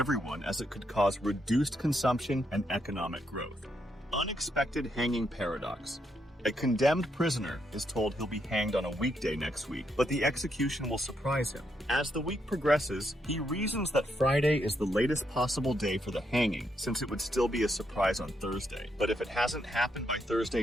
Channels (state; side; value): normal; both; correlation 0.78